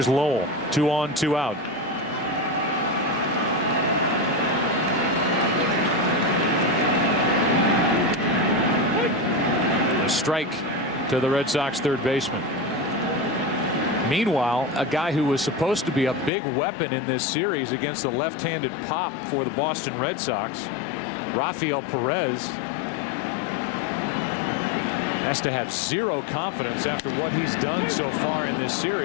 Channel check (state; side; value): drops out; right; at 16.3 s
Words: Lowell. 2 on, 2 out. strike to the Red Sox third baseman. Meanwhile, a guy who was supposed to be a big weapon in this series against the left-handed pop for the Boston Red Sox, Rafael Perez, has to have zero confidence after what he's done so far in this